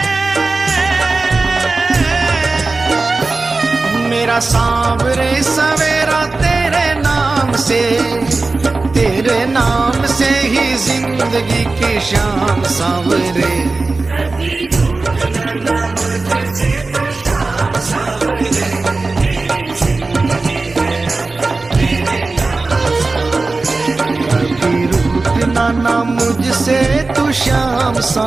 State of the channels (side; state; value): left; quieter; 3.6 dB